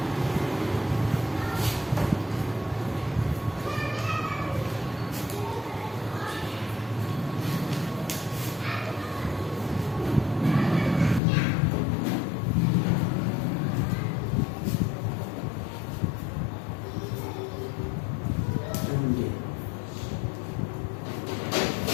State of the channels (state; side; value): drops out; right; at 11.2 s